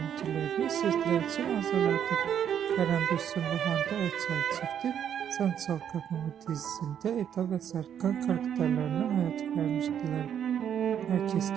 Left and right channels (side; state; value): left; quieter; 9.1 dB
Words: sizler için hazırladık. Kerem Bürsin ve Hande Erçel çifti Sen Çal Kapımı dizisinde Eda ve Serkan karakterlerine hayat vermiştiler. Herkes